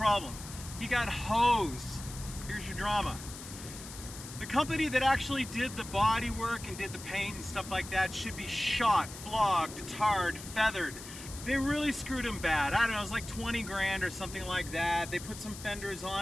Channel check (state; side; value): noise; left; hiss, 13 dB below the sound